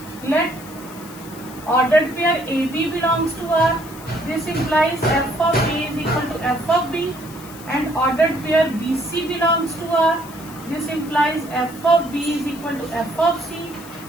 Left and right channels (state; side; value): noise; left; hiss, 18 dB below the sound